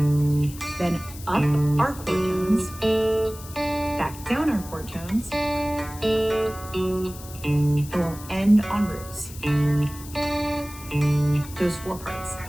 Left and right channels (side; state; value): left; noise; hiss, 16 dB below the sound